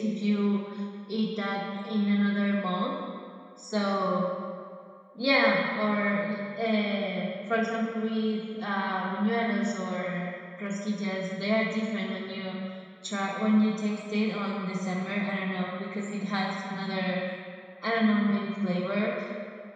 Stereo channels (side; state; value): both; identical; correlation 1.00